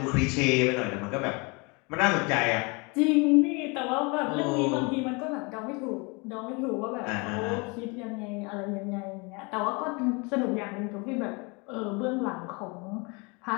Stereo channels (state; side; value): quieter; right; 29.6 dB